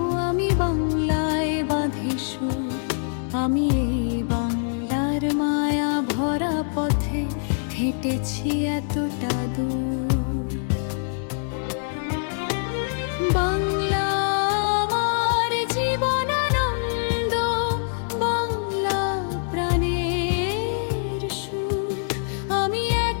আমি বাংলায় বাঁধি সুর, আমি এই বাংলার মায়া ভরা পথে হেঁটেছি এতটা দূর। বাংলা আমার জীবনানন্দ, বাংলা প্রাণের সুখ। আমি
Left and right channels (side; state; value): right; silent; digital silence